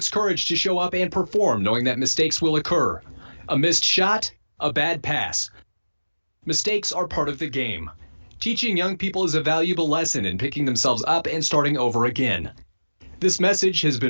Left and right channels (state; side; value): inverted; both; correlation -1.00